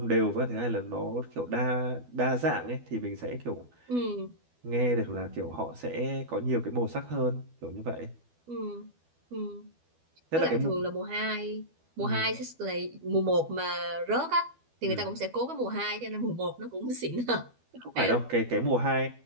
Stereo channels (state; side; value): late; left; 12 ms